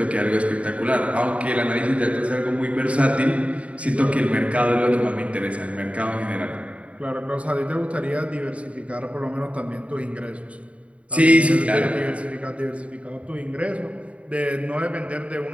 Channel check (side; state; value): left; late; 0.064 ms